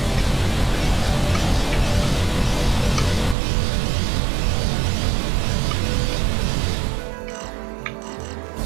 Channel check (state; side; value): drops out; left; at 3.4 s